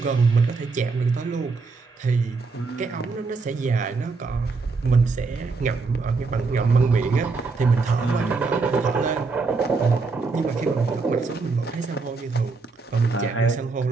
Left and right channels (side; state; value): left; quieter; 4.2 dB